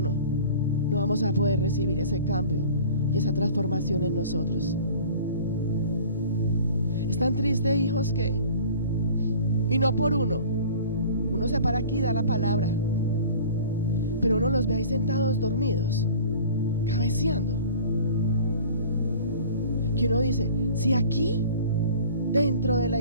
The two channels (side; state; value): both; inverted; correlation -0.44